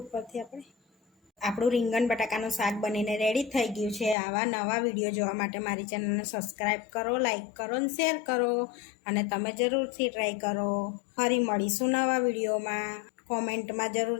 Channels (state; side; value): drops out; right; at 4.2 s